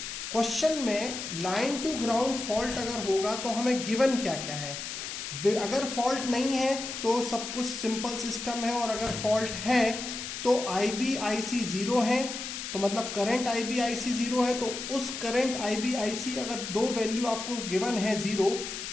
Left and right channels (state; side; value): noise; left; hiss, 7 dB below the sound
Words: क्वेश्चन में लाइन टू ग्राउंड फॉल्ट अगर होगा तो हमें गिवन क्या क्या है। अगर फॉल्ट नहीं है तो सब कुछ सिंपल सिस्टम है, और अगर फॉल्ट है तो IB IC 0 है, तो मतलब करंट IB IC 0 है। तो उस करंट IB IC अगर दो वैल्यू आपको गिवन है 0,